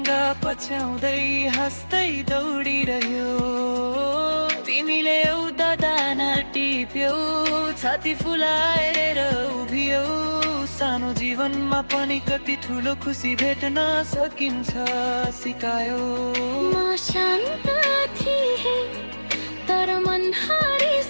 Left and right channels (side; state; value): both; inverted; correlation -1.00